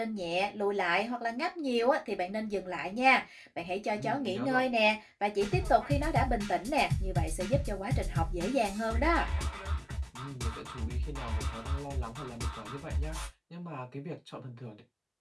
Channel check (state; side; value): identical; both; correlation 1.00